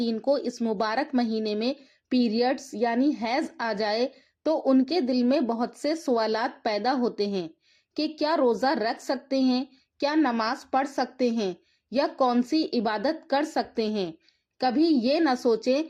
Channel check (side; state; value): both; identical; correlation 1.00